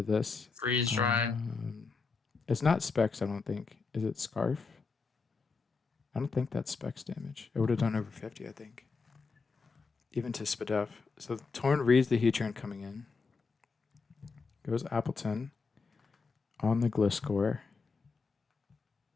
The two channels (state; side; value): quieter; right; 4.6 dB